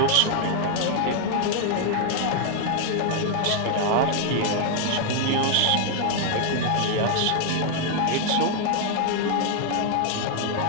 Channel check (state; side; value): different; both; correlation 0.00